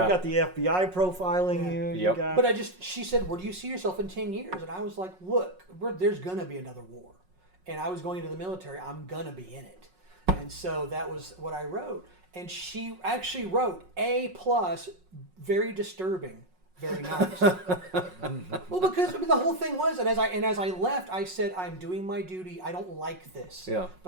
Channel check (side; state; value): left; late; 5.4 ms